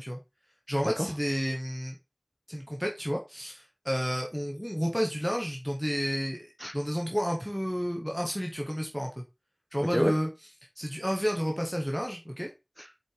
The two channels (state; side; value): identical; both; correlation 1.00